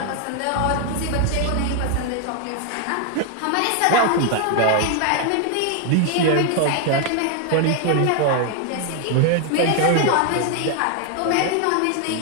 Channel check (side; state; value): both; different; correlation 0.00